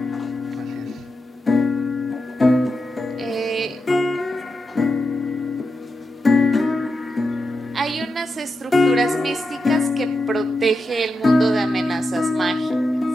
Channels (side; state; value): both; normal; correlation 0.88